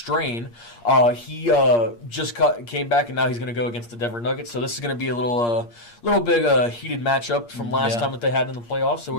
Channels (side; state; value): right; late; 8.5 ms